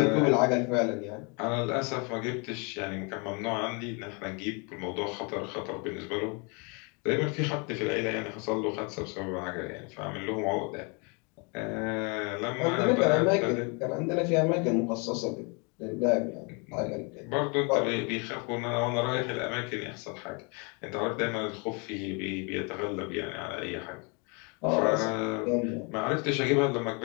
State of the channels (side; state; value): right; quieter; 33.1 dB